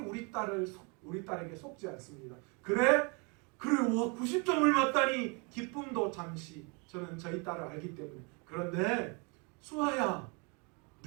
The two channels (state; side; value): quieter; left; 32.7 dB